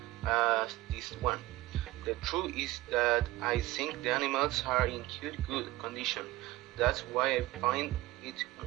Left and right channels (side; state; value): left; quieter; 18.1 dB